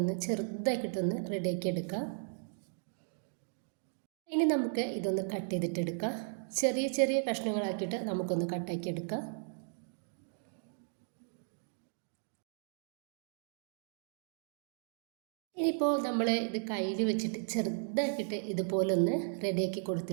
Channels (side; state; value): left; silent; digital silence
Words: ചെറുതാക്കിയിട്ടൊന്ന് റെഡിയാക്കി എടുക്കാം. ഇനി നമുക്ക് ഇതൊന്ന് കട്ട് ചെയ്തിട്ടെടുക്കാം. ചെറിയ ചെറിയ കഷ്ണങ്ങളാക്കിയിട്ട് നമുക്കൊന്ന് കട്ടാക്കി എടുക്കാം. ഇനിയിപ്പോൾ നമ്മൾ ഇത് കയ്യിൽ വെച്ചിട്ട് ചെറുതാക്കിയിട്ട് ഇതുപോലൊന്ന് റെഡിയാക്കി